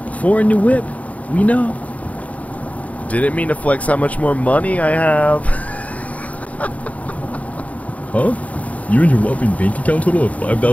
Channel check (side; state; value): right; late; 0.068 ms